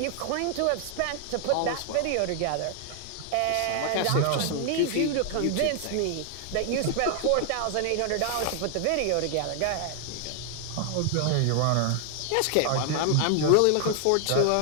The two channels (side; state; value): both; different; correlation 0.00